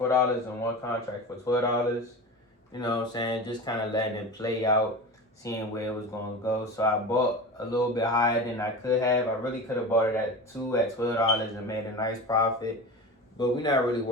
and 1 contract for $12. You know what I'm saying? Just kind of letting it play out, seeing where it was going to go. So I bought a little bit higher than I could have. I really could have bought it at $12 and made a nice profit. But we're not really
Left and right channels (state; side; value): normal; both; correlation 0.29